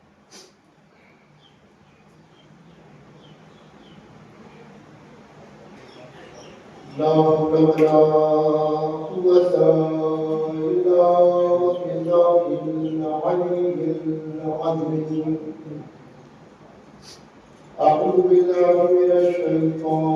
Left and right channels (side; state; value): both; identical; correlation 1.00